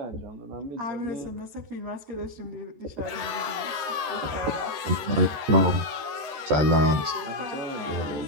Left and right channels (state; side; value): late; left; 14 ms